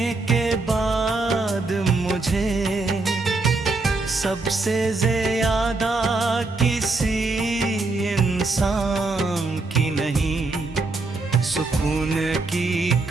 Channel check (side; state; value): left; quieter; 3.4 dB